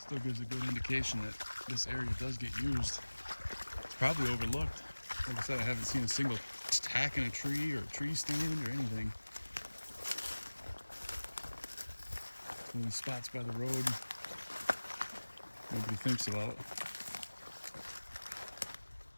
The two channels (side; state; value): both; inverted; correlation -1.00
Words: gives a good indication that this area does get used. It's probably overlooked. Like I said, I haven't seen a single tack in a tree or a tree stand or anything. One of these spots by the road nobody thinks about.